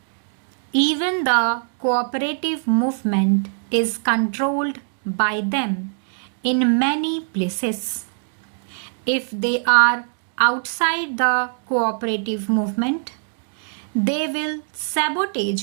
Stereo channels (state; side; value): silent; left; 64 dB below the other